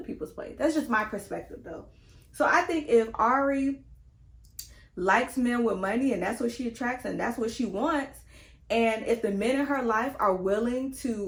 plate. That's just my perspective, though. So I think if Ari likes men with money and that's what she attracts and that's what she wants, and if the men in her life are willing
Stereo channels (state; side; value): identical; both; correlation 1.00